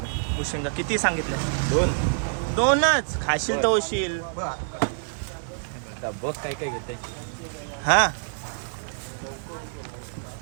भुशिंगा किती सांगितले? 2च खाशील तर होशील. बस काय काय घेते. हा,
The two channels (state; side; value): silent; left; 56 dB below the other